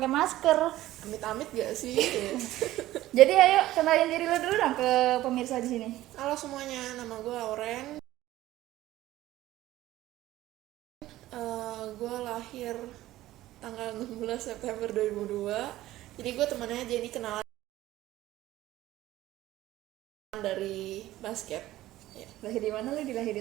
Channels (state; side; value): quieter; left; 15.4 dB